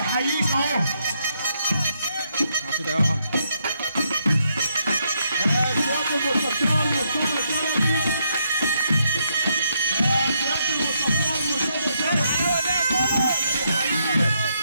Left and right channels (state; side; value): inverted; both; correlation -0.77